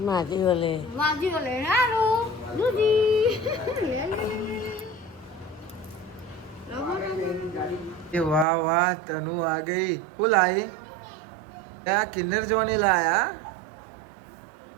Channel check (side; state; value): left; drops out; at 8.5 s